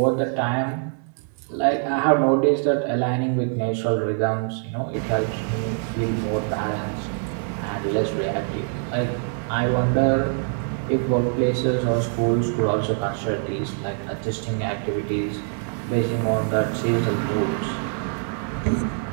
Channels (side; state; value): left; silent; 55 dB below the other